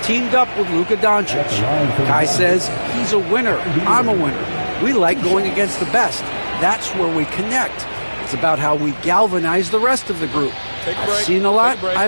up with Luka Doncic. Kai says he's a winner. I'm a winner. We like going against the best. That's where we connect. It's about how we galvanize the rest of the group. I've seen a lot.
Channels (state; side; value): inverted; both; correlation -1.00